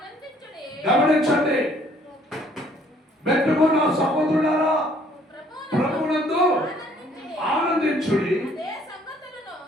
గమనించండి. మెట్టుకున్న సహోదరులారా ప్రభువునందు ఆనందించుడి.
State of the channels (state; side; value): normal; both; correlation 0.61